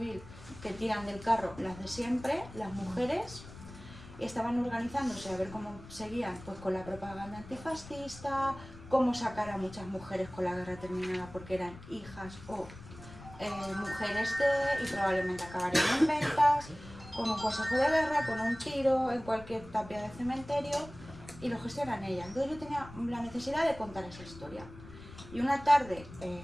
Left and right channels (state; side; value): noise; left; rumble, 16 dB below the sound